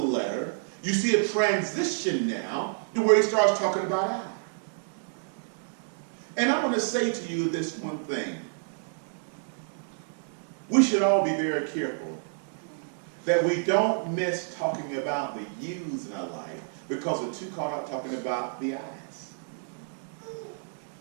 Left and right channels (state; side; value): silent; left; digital silence